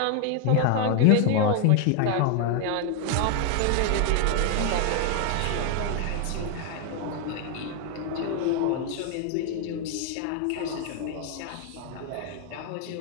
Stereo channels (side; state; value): both; different; correlation 0.00